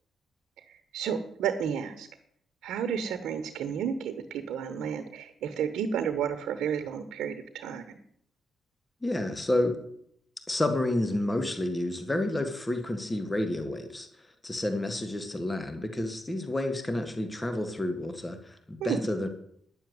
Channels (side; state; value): both; normal; correlation 0.79